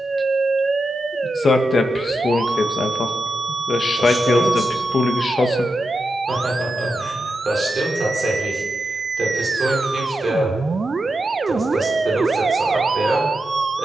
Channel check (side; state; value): both; normal; correlation 0.88